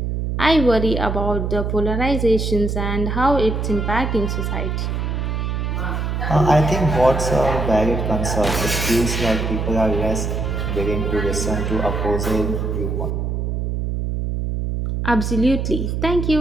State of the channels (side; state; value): right; noise; hum, 1 dB below the sound